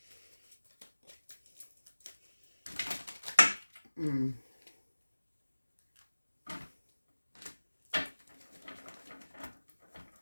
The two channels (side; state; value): both; inverted; correlation -1.00